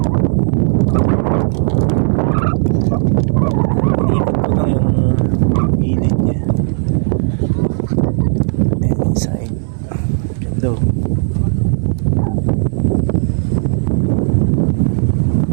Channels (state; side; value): silent; left; digital silence